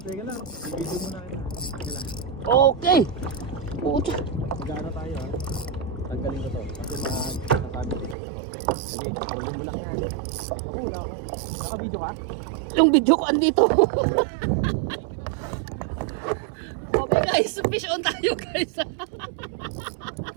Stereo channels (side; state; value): left; drops out; at 8.2 s